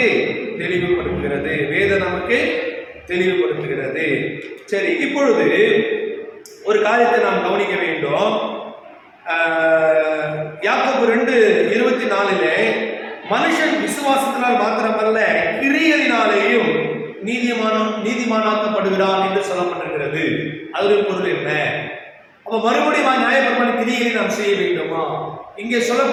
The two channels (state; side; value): identical; both; correlation 1.00